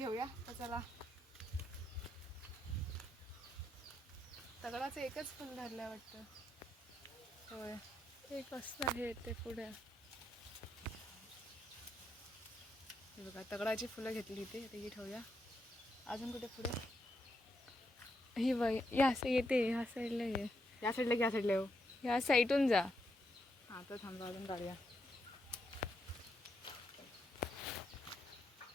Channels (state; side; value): normal; both; correlation 0.80